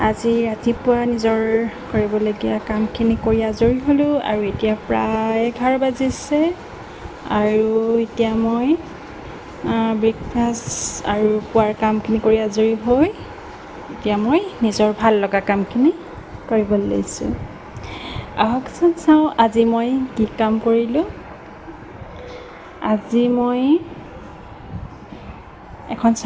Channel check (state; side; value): identical; both; correlation 1.00